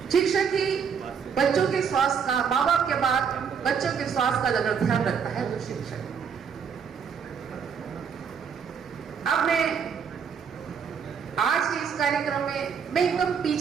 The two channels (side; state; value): left; quieter; 6.7 dB